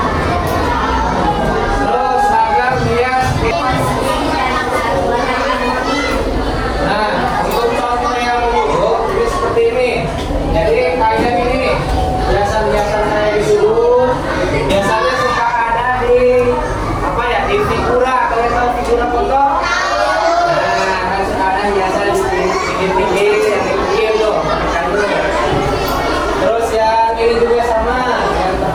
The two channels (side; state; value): both; identical; correlation 1.00